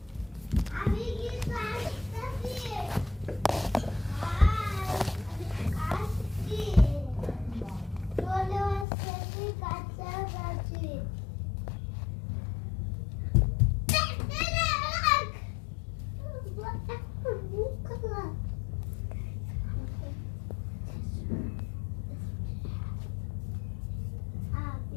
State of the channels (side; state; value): right; drops out; at 8.8 s